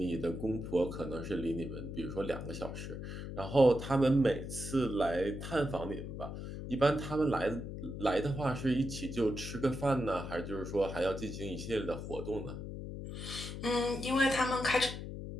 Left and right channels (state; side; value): noise; left; hum, 7 dB below the sound